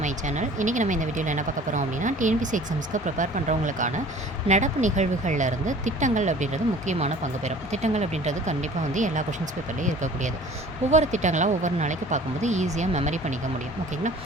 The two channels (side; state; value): both; normal; correlation 0.47